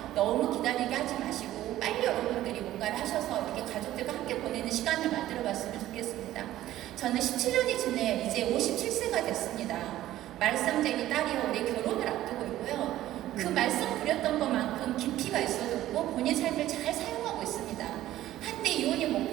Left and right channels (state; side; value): quieter; left; 14.1 dB